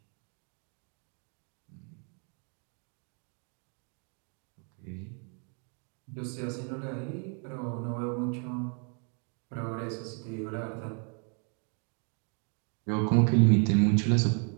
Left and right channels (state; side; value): quieter; left; 39.5 dB